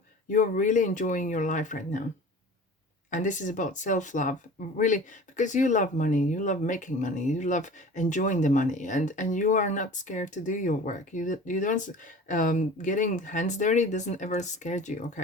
you're really enjoying your life right now. And this is about self-love, really, because you love money, you love making money, you love enjoying the money, and you are not scared to do your work. You don't, getting hands dirty doesn't ever scare you,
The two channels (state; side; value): normal; both; correlation 0.40